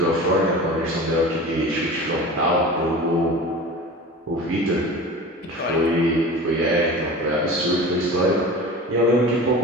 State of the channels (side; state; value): both; normal; correlation 0.35